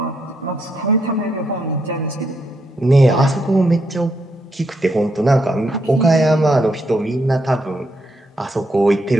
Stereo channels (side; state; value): both; normal; correlation 0.78